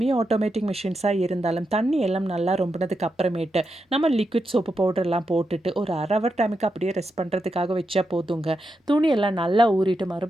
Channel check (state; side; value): normal; both; correlation 0.86